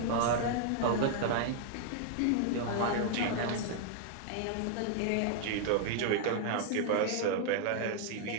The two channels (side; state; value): both; different; correlation 0.00